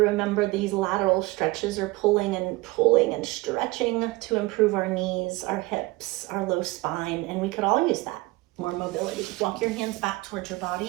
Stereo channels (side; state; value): left; quieter; 21.2 dB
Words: these lateral stretches are pulling and stretching to improve our knees, our hips, our low spine, and we could all use that. More mobility. Walk your hands back towards your